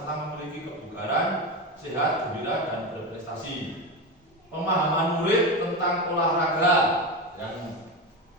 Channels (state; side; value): normal; both; correlation 0.19